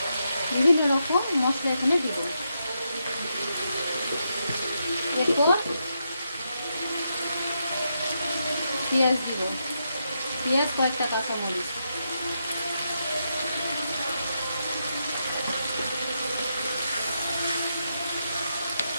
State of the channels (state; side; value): inverted; both; correlation -0.83